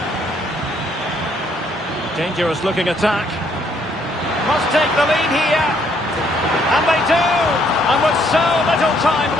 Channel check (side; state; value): both; normal; correlation 0.68